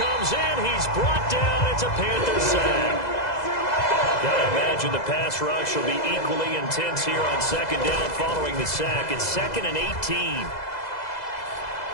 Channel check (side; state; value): right; late; 2.0 ms